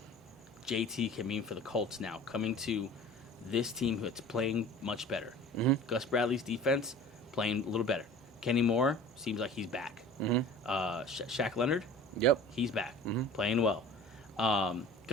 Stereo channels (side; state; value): both; normal; correlation 0.42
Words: JT can mean for the Colts now, coming to this team that's playing much better. Mm-hmm. Gus Bradley's defense playing a little better. Kenny Moore seems like he's back. Mm-hmm. Shaq Leonard, Yep. he's back, Mm-hmm. playing well.